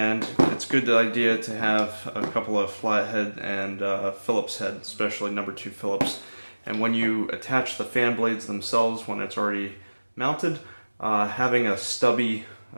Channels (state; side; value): inverted; both; correlation -1.00